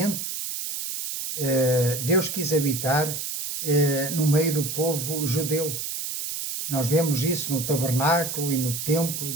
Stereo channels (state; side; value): noise; right; hiss, 5 dB below the sound